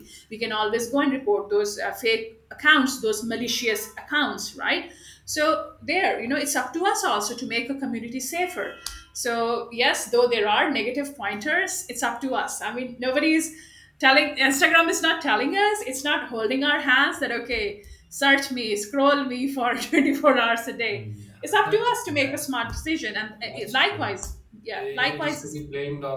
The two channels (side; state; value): both; identical; correlation 1.00